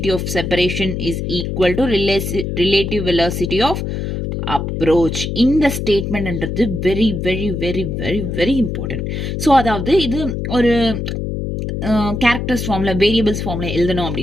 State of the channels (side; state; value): left; noise; hum, 3 dB below the sound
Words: of separation is equal to relative velocity of approach. இந்த ஸ்டேட்மெண்ட்ன்றது very very very very very important. So அதாவது இது ஒரு characters formula, variables formula எழுதணும்